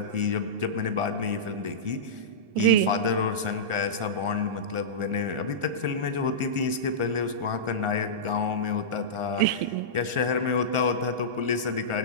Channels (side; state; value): left; late; 1.4 ms